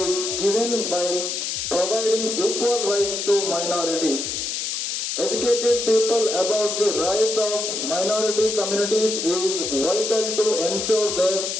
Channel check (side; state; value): left; noise; hiss, 2 dB below the sound